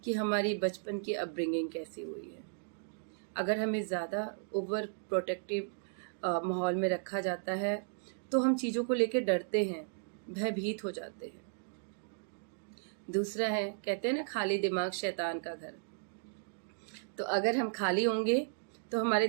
कि हमारी बचपन की अपब्रिंगिंग कैसी हुई है। अगर हमें ज़्यादा ओवर प्रोटेक्टिव माहौल में रखा जाता है तो हम चीज़ों को लेकर डरते हैं, भयभीत हो जाते हैं। दूसरा है, कहते हैं ना खाली दिमाग शैतान का घर। तो अगर हम खाली होंगे तो हमारे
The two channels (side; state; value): left; silent; digital silence